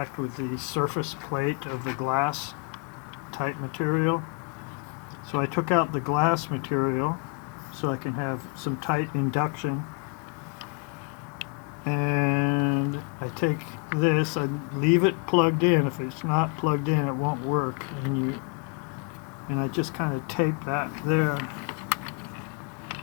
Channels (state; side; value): quieter; right; 33.9 dB